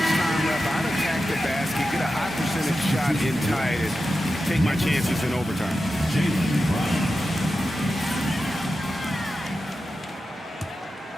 time left, I'd attack the basket, get a high percentage shot and tie it, and take my chances in overtime. Jaylen Brown.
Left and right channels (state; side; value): normal; both; correlation 0.91